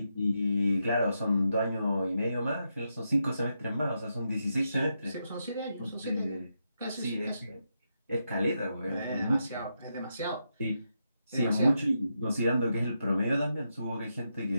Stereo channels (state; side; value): inverted; both; correlation -0.84